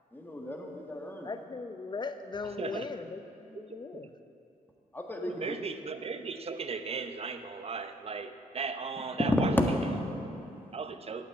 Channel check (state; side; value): normal; both; correlation 0.64